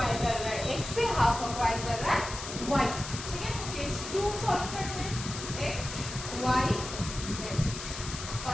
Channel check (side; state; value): left; noise; hiss, 8 dB below the sound